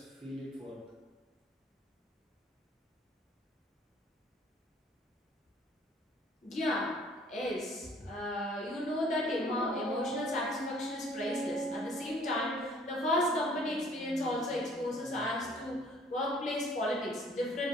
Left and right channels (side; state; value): both; normal; correlation 0.57